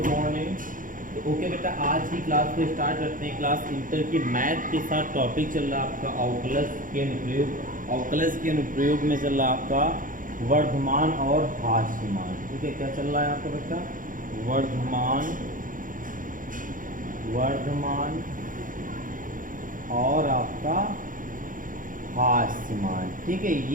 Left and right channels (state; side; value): late; left; 0.39 ms